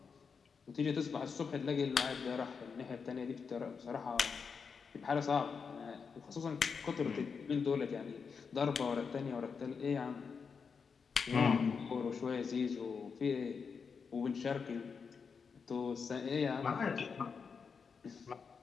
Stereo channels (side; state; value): right; quieter; 5.7 dB